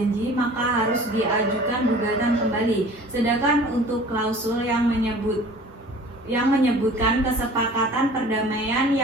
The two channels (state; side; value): normal; both; correlation 0.46